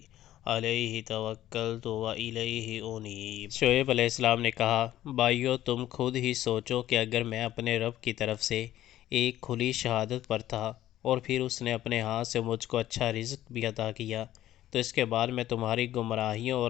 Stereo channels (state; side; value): quieter; right; 13.4 dB